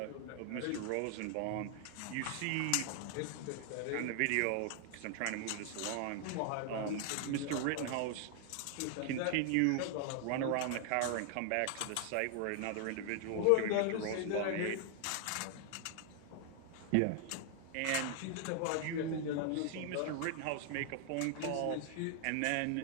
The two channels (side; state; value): both; different; correlation 0.00